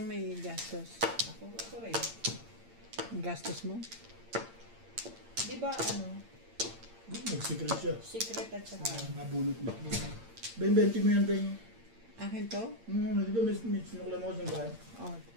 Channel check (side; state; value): left; late; 8.8 ms